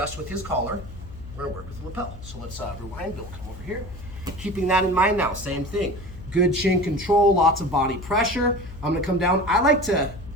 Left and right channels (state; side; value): noise; left; hum, 14 dB below the sound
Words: with his collar, we're gonna work with the lapel. So let's rewind, Bill, come over here. Keeping that in mind now, same thing. Good chin control, lots of body pressure. I'm gonna come down. I like to